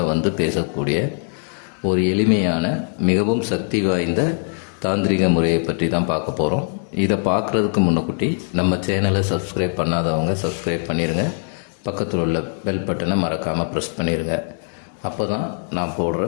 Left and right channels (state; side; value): silent; right; 62 dB below the other